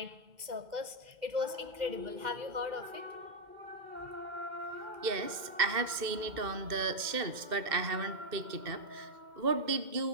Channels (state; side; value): late; left; 2.1 ms